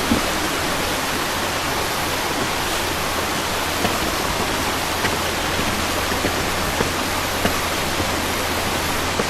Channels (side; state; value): both; identical; correlation 1.00